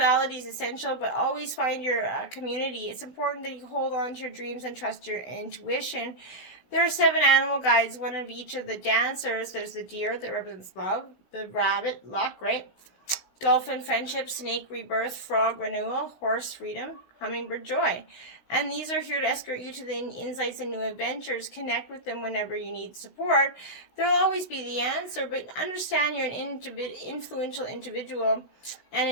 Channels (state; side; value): late; right; 16 ms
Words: is essential, but always find your community. It's important that you hold on to your dreams and trust your intuition. There are 7 animal guides, one of each of the dancers. There's the deer that represents love, the rabbit, luck, right? Dolphin, friendship, snake, rebirth, frog, renewal, horse, freedom, hummingbird, joy. And these are here to escort you to the insights and new adventures. Connect with them whenever you need support. There will always be the answer, but understand you're an influential individual and